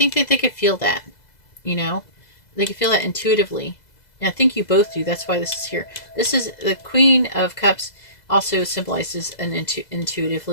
that they could feel that, you know, they could feel that intuitively. And I think you both do. That's why this is here. This is the Queen of Cups, also symbolizes an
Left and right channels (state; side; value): late; right; 2.0 ms